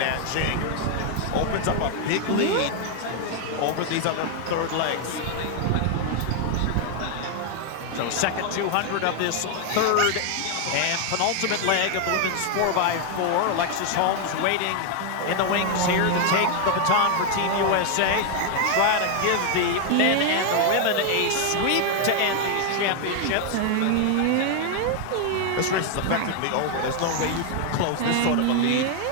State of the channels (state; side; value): different; both; correlation 0.00